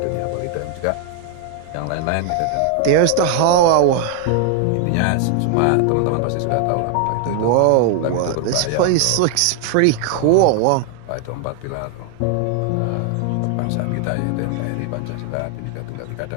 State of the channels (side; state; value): both; different; correlation 0.00